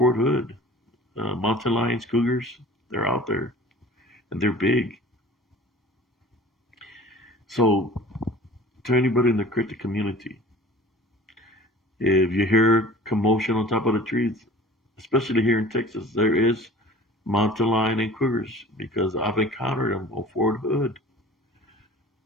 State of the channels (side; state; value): both; normal; correlation 0.44